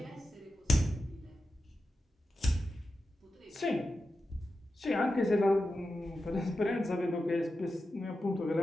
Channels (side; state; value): both; normal; correlation 0.91